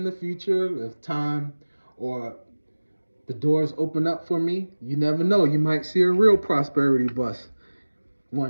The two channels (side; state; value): both; inverted; correlation -1.00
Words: the future if time or the doors open up for me. You never know. You might see a real prosperity bus